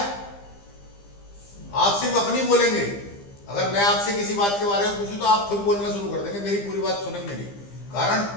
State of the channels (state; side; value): late; right; 15 ms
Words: आप सिर्फ अपनी बोलेंगे। अगर मैं आपसे किसी बात के बारे में पूछूं तो आप खुद बोलना शुरू कर देंगे, मेरी पूरी बात सुनेंगे नहीं।